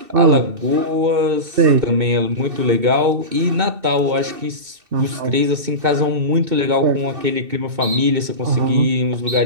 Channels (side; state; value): left; late; 2.7 ms